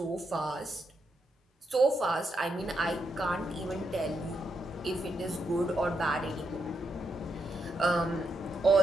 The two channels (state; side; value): normal; both; correlation 0.81